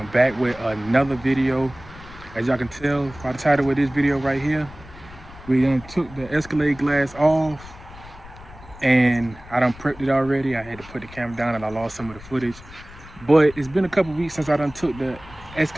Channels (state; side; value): noise; left; rumble, 19 dB below the sound